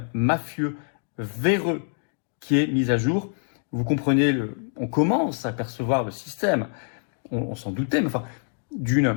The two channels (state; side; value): silent; right; 61 dB below the other